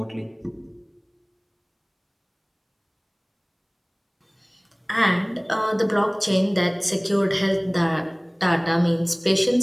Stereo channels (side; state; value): both; identical; correlation 1.00